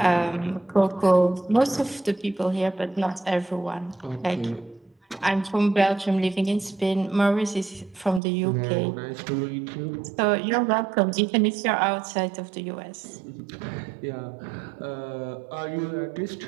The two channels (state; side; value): drops out; left; at 8.2 s